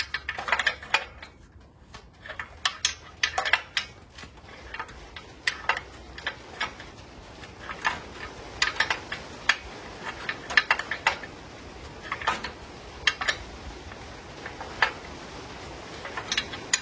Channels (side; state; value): both; identical; correlation 1.00